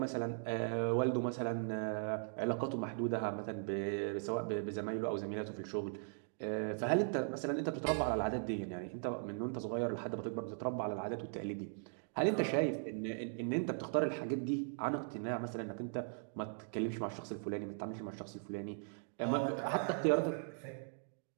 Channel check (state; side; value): silent; left; digital silence